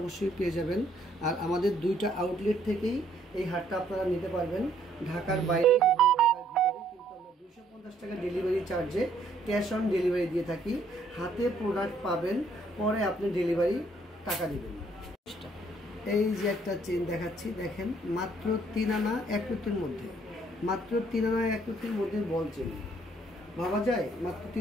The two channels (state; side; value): normal; both; correlation 0.66